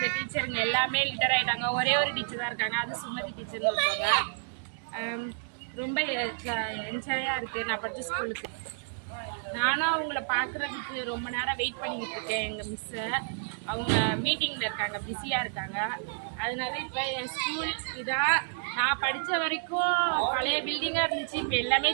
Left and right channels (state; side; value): silent; left; digital silence